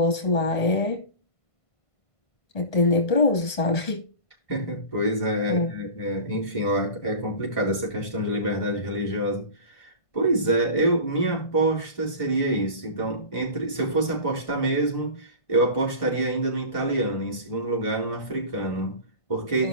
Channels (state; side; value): late; right; 1.5 ms